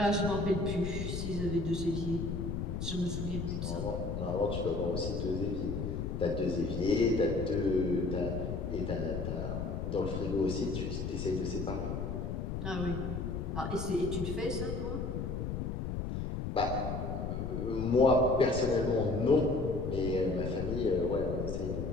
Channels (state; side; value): noise; left; rumble, 3 dB below the sound